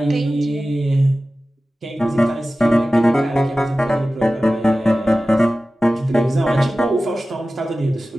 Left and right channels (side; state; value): both; normal; correlation 0.96